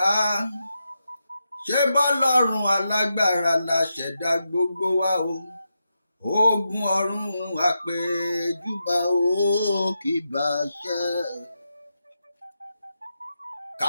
ṣé bọ́lọ́run alágbára la ṣẹ̀dá gbogbo wa o. Ogun ọ̀run àpèjúbà o kì bá ṣẹ.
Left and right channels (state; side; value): inverted; both; correlation -0.87